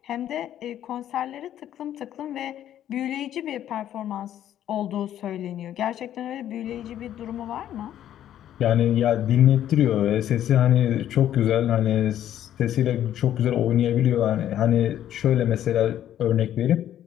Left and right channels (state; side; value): quieter; right; 11.3 dB